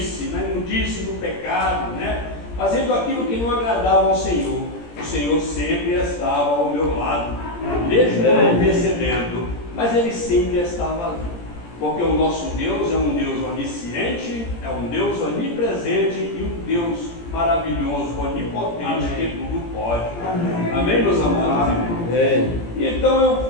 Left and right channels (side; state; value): right; late; 17 ms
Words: na imundice do pecado, né? Fazendo aquilo que não agradava ao Senhor, o Senhor sempre estava ao meu lado, mesmo não percebendo, mas Ele sempre estava ali, porque o nosso Deus é um Deus onisciente, é um Deus onipresente e um Deus maravilhoso, onipotente, que tudo pode. Amém, meus amados irmãos? E então